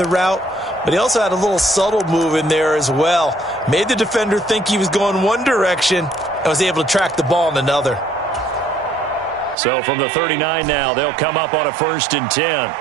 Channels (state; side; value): drops out; left; at 9.6 s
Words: route, but he also had a little subtle move in there as well. Made the defender think he was going one direction and was able to track the ball in another. So from the 39 now, they'll come up on a 1st and 10.